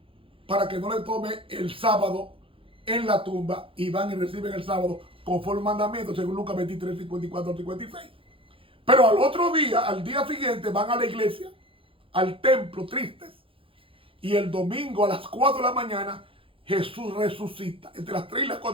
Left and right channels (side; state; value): left; late; 0.26 ms